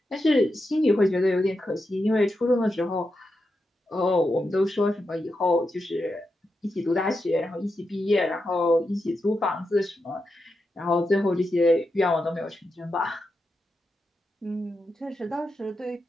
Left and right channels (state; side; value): normal; both; correlation 0.87